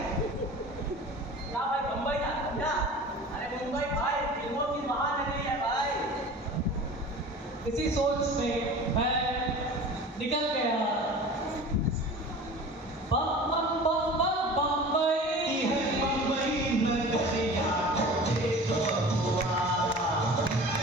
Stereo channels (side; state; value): both; normal; correlation 0.39